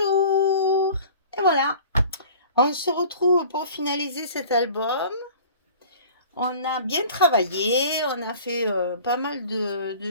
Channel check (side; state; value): both; inverted; correlation -0.45